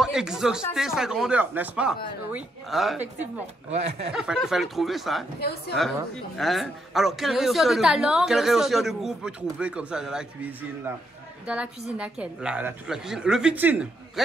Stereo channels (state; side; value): normal; both; correlation 0.77